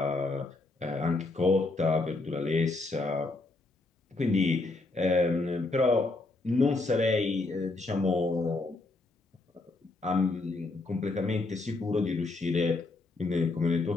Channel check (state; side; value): quieter; right; 3.3 dB